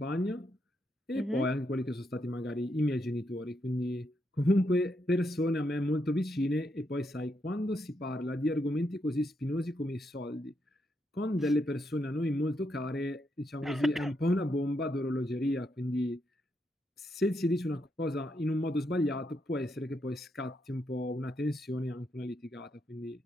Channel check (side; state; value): both; normal; correlation 0.80